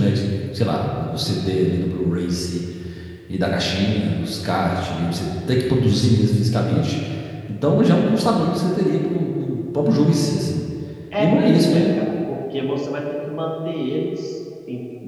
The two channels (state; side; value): identical; both; correlation 1.00